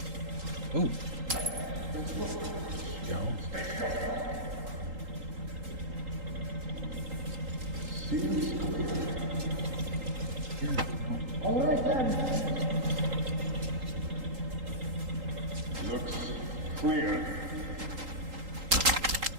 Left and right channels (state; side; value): late; left; 3.8 ms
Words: Ooh. Go. All right then. Looks clear.